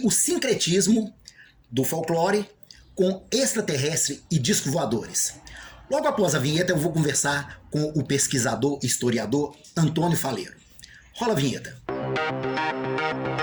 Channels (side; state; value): both; identical; correlation 1.00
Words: sincretismo do folclore com extraterrestre e disco voadores. Logo após a vinheta eu vou conversar com o pesquisador e historiador Antônio Faleiro. Rola a vinheta.